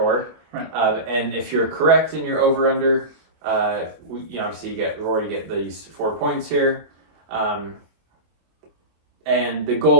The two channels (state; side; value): late; left; 24 ms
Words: Right. And if you're correct in your over-under, obviously you get these 4 points here. And the